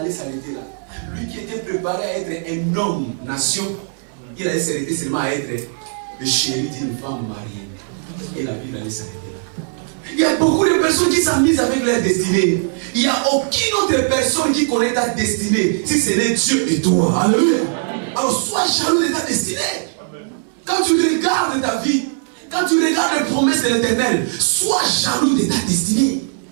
s'arrêter là. Lui qui était préparé à être un homme, nation, il allait s'arrêter seulement à être le chéri d'une femme mariée. Et la Bible allait s'arrêter là. Il y a beaucoup de personnes qui s'amusent avec leur destinée. Il n'y a aucune autre personne qui connaît ta destinée si ce n'est Dieu et toi. Alléluia. Alors sois jaloux de ta destinée. Quand tu regardes ta vie, quand tu regardes les promesses de l'Éternel, sois jaloux de ta destinée.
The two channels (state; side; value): silent; left; 60 dB below the other